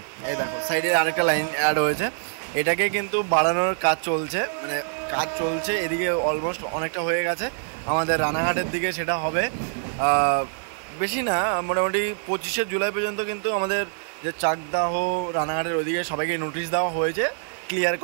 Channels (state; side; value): silent; left; 60 dB below the other